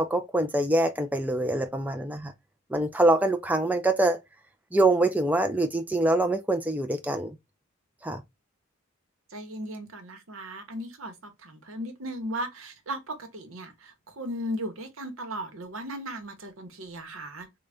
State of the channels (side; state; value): both; normal; correlation 0.70